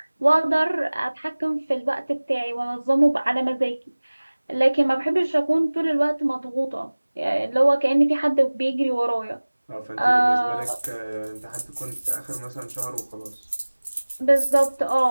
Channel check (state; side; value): inverted; both; correlation -1.00